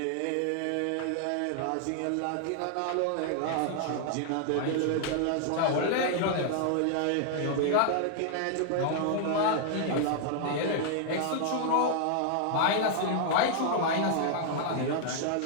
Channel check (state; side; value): different; both; correlation 0.00